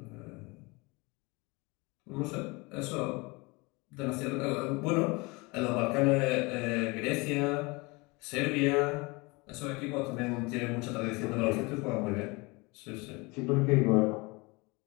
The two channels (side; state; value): right; quieter; 26.3 dB